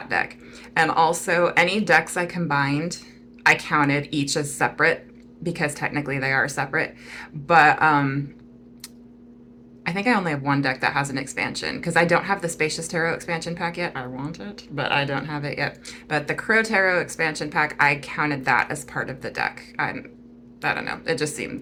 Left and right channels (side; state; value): both; identical; correlation 1.00